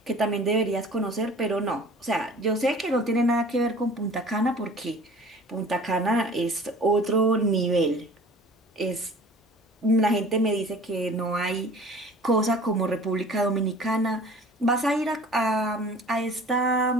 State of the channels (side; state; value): both; normal; correlation 0.46